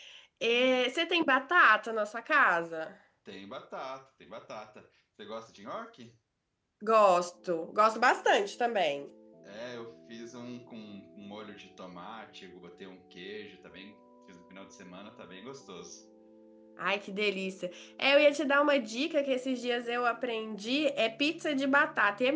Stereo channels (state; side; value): identical; both; correlation 1.00